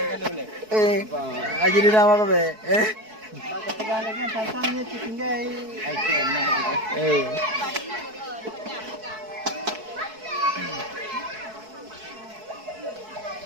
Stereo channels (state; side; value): late; left; 4.6 ms